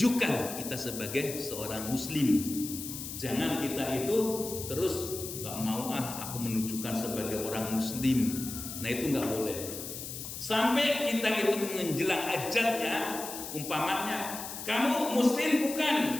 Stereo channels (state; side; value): noise; left; hiss, 8 dB below the sound